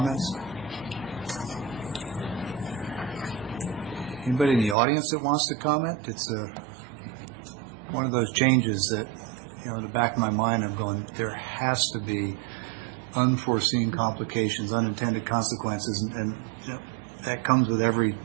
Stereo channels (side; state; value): left; drops out; at 4.8 s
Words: Anybody in the audience that wants to comment? It's one of those changes that, you know, in the back of my mind I'm going, there has to be unforeseen complications, unintended consequences, and you know, that comes with every